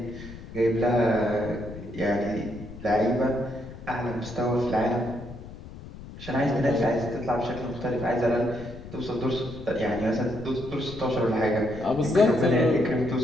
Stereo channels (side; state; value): left; noise; rumble, 14 dB below the sound